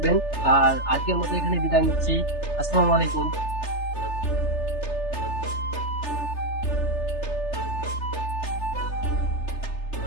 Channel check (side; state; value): right; late; 3.3 ms